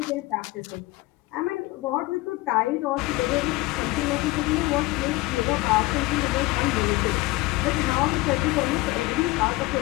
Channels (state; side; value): quieter; right; 20.4 dB